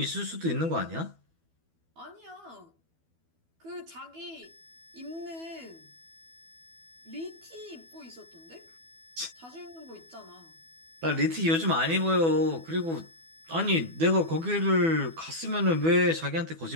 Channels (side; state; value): left; late; 12 ms